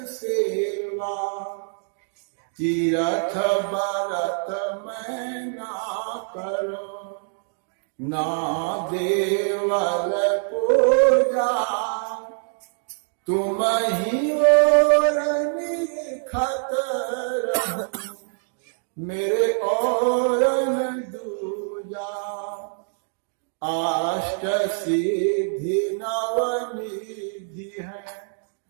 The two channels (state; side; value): silent; left; digital silence